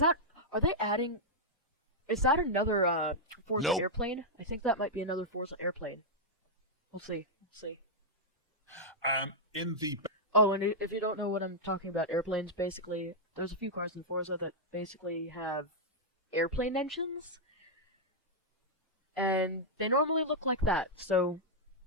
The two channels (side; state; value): both; normal; correlation -0.06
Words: that another Forza airplane? I think that might be another Forza airplane. We'll see. In the Oh, and if you don't know what I'm talking about, airplanes, basically, there's a few cars in Forza that basically have airplane engines, and they normally look like that, so